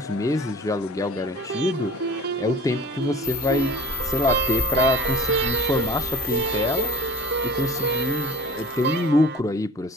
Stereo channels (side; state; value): both; normal; correlation 0.43